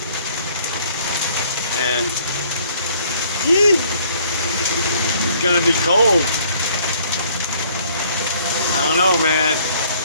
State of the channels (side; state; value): both; inverted; correlation -0.60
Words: And it's gonna be cold. I don't know, man.